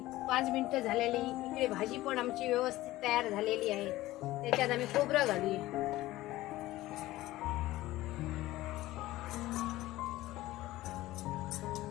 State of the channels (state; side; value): quieter; right; 16.9 dB